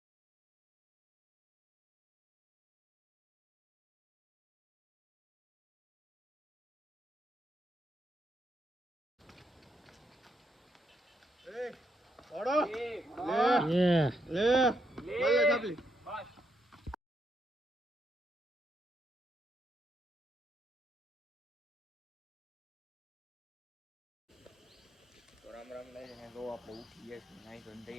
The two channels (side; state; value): both; normal; correlation 0.77